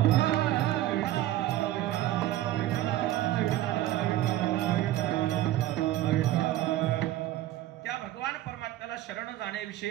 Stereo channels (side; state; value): left; quieter; 14.4 dB